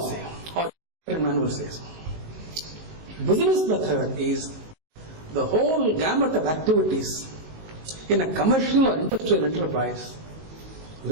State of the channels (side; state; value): left; late; 19 ms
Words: say, or Indian manual says? Business method is the whole gamut of activities in a commercial or industrial enterprise